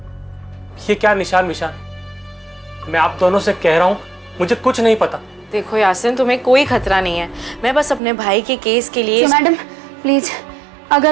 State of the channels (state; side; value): drops out; left; at 8.0 s